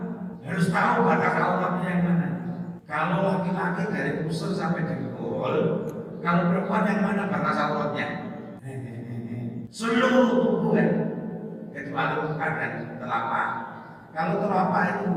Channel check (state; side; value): identical; both; correlation 1.00